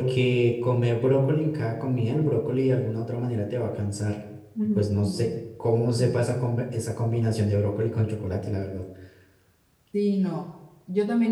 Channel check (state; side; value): identical; both; correlation 1.00